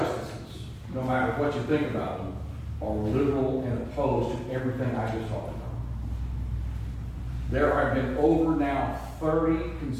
no matter what you think about them, are liberal and opposed to everything I just talked about. There have been over now 30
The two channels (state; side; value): identical; both; correlation 1.00